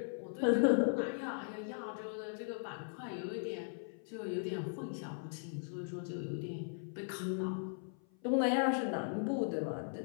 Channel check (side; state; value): right; silent; 52 dB below the other